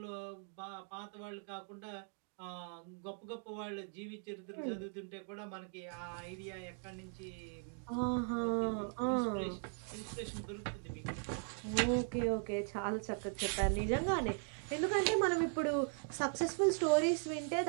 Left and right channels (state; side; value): silent; left; 52 dB below the other